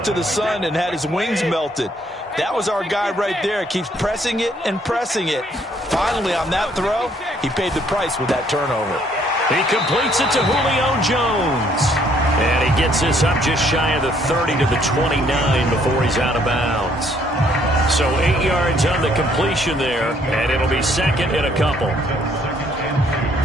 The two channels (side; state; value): both; normal; correlation 0.66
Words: the sun and had his wings melted. That was our guy right there. Keeps pressing it and pressing it. Finally, on that throw, he paid the price with that turnover. He completes it to Julio Jones. And he gets this up just shy of the 30 to the 29 before he's out of bounds. So 8 yards on the completion there, and it'll be second and a couple.